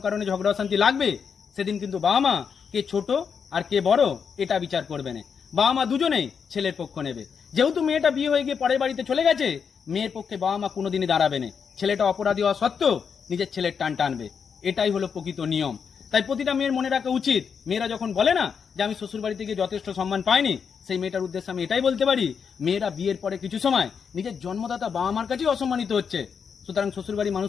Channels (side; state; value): right; quieter; 6.5 dB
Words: কারণে ঝগড়া শান্তি লাগবে, সেদিন কিন্তু বাবা মা কে ছোট আর কে বড় এটা বিচার করবে না, বাবা মা দুজনেই ছেলের পক্ষ নেবে। যেহেতু মেয়েটা বিয়ে হয়ে গিয়ে পরের বাড়িতে চলে গেছে, মেয়ের পক্ষে বাবা মা কোনোদিনই দাঁড়াবে না, ছেলেটা অপরাধী হওয়া সত্ত্বেও নিজের ছেলের টান টানবে। এটাই হলো প্রকৃত নিয়ম। তাই প্রতিটা মেয়ের মনে রাখা উচিত, মেয়েরা যখন বলে না যে আমি শ্বশুর বাড়িতে গিয়ে যথেষ্ট সম্মান পাইনি, সেই মেয়েটার উদ্দেশ্যে আমি এটাই বলতে পারি, মেয়েরা বিয়ের পরে কিছু সময় নিজের জন্মদাতা বাবা মার কাছেই অসম্মানিত হচ্ছে। সুতরাং শ্বশুরবাড়ির